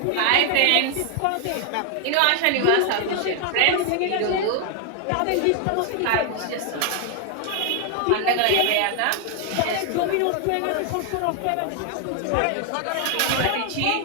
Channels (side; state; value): both; different; correlation 0.00